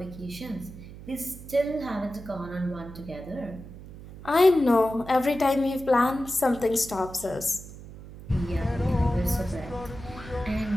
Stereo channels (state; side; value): noise; right; hum, 15 dB below the sound